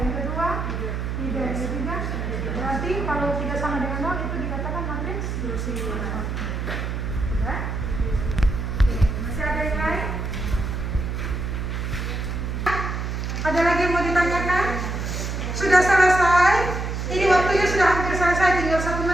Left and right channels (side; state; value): right; noise; hum, 3 dB below the sound